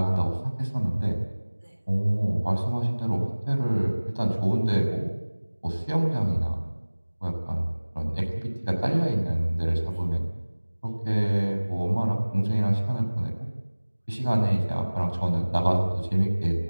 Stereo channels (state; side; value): inverted; both; correlation -1.00